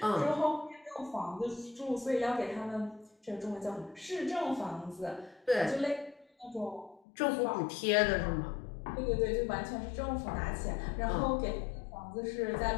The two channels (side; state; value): right; drops out; at 7.0 s